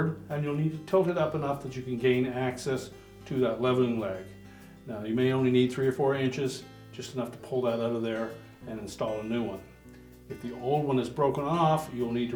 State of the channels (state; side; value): identical; both; correlation 1.00